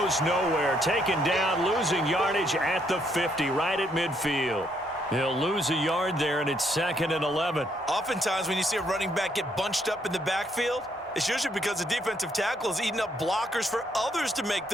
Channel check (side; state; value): both; normal; correlation 0.72